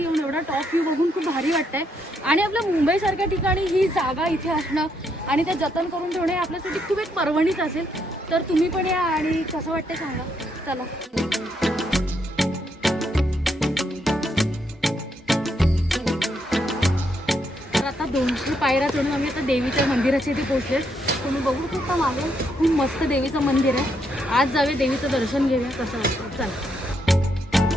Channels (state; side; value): normal; both; correlation 0.76